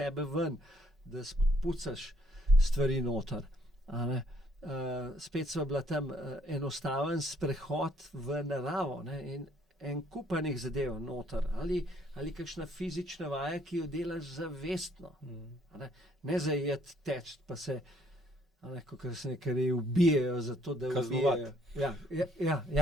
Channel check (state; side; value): normal; both; correlation 0.66